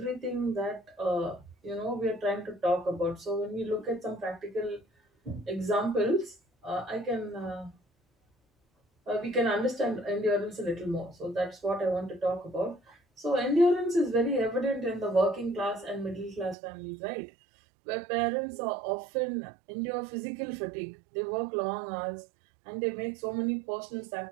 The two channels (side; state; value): left; drops out; at 16.6 s